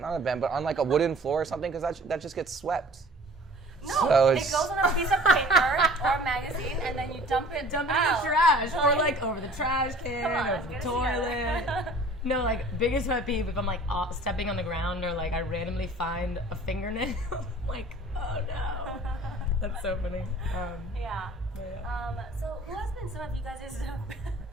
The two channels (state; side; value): normal; both; correlation 0.48